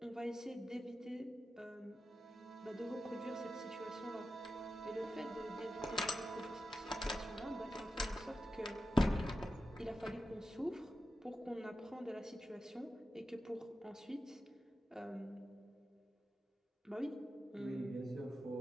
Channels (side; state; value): both; normal; correlation 0.91